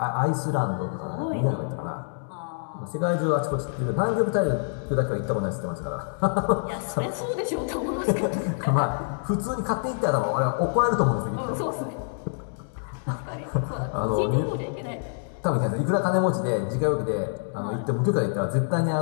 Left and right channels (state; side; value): silent; right; digital silence